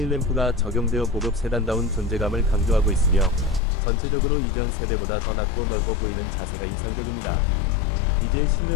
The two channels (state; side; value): drops out; right; at 3.6 s